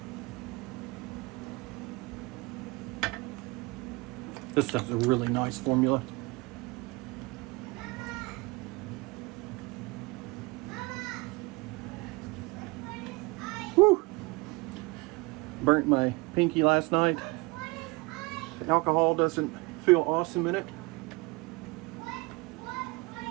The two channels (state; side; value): quieter; left; 25.1 dB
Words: This stuff's a really nice formula. Woo! Burnt my pinky last night. The alcohol doesn't feel awesome in it.